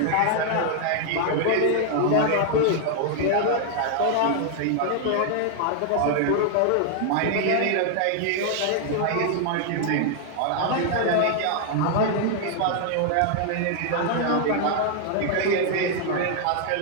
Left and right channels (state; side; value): different; both; correlation 0.00